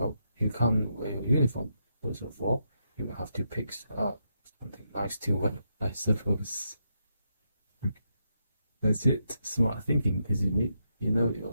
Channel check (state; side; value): inverted; both; correlation -0.82